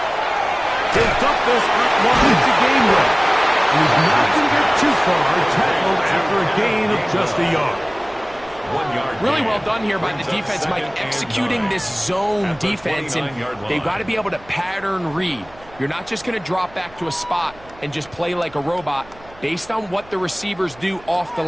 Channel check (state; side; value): noise; right; hum, 23 dB below the sound